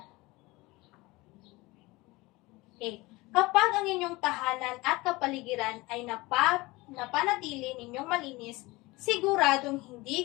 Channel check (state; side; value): quieter; right; 21.9 dB